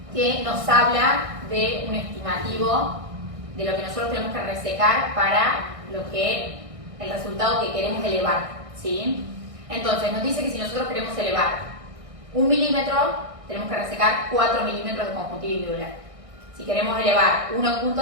que nos habla de un estimativo de lo que nosotros tenemos que resecar para lo que el resultado que queremos elevar, ¿sí? Entonces nos dice que si nosotros queremos elevar 1 milímetro, tenemos que resecar 4 milímetros de conjuntiva y Müller. Si queremos elevar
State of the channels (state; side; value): late; left; 1.6 ms